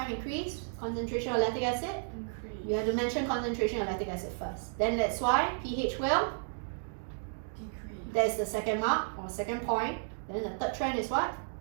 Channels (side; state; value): left; silent; digital silence